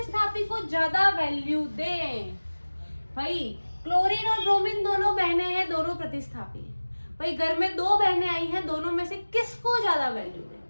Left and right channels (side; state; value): both; inverted; correlation -1.00